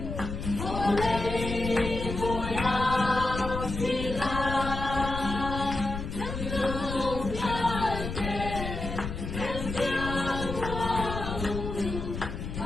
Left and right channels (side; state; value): left; noise; rumble, 6 dB below the sound